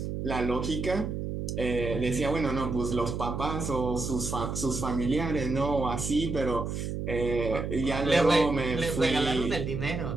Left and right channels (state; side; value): noise; right; hum, 4 dB below the sound